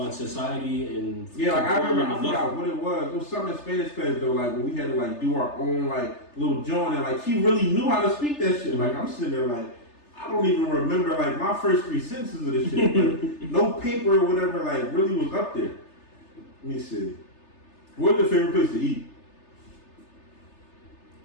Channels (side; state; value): right; late; 3.3 ms